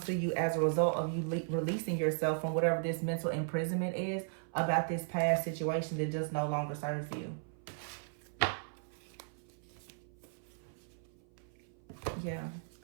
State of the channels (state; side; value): silent; left; 54 dB below the other